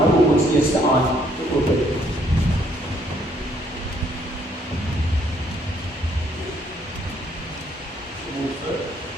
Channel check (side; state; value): both; normal; correlation 0.67